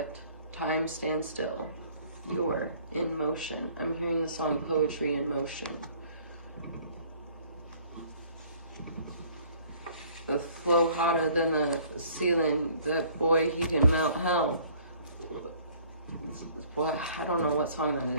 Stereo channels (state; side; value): inverted; both; correlation -0.56